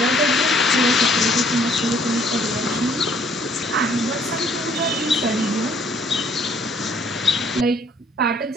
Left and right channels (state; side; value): normal; both; correlation 0.62